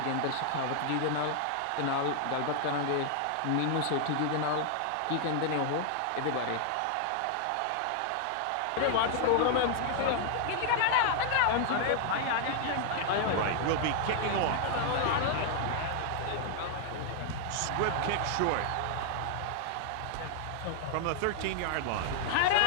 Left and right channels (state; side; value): different; both; correlation 0.00